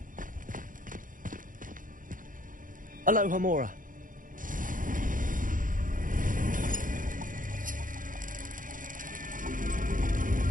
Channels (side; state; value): left; late; 0.39 ms